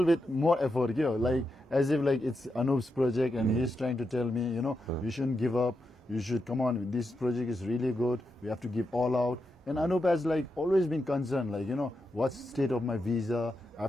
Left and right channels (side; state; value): both; normal; correlation 0.86